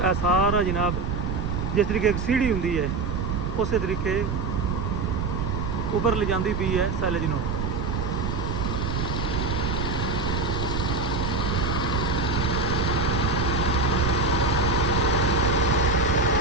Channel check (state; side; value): noise; right; rumble, 2 dB below the sound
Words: सारा जनाब जिस तरीके एक सीढ़ी होंगी है उस तरीके उपर ले जाती पई है सैलज नूं।